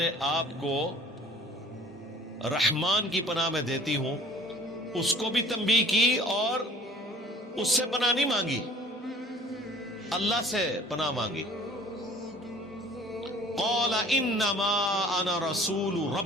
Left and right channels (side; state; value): both; normal; correlation 0.49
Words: آپ کو رحمان کی پناہ میں دیتی ہوں۔ اس کو بھی تنبیہ کی اور اس سے پناہ نہیں مانگی، اللہ سے پناہ مانگی۔ قال انما انا رسول